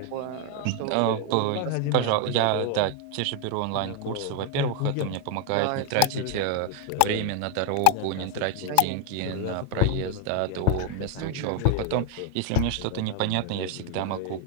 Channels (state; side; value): different; both; correlation 0.01